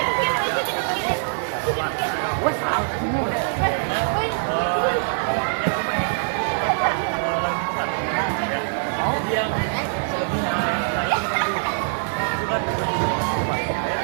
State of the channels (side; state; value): left; silent; digital silence